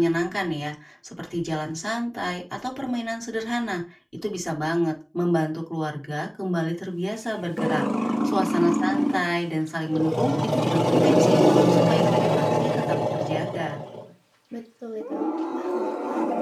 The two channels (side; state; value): both; identical; correlation 1.00